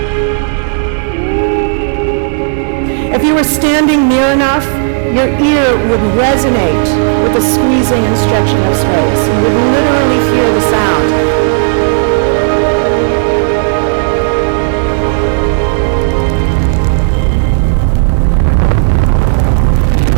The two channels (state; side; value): silent; left; digital silence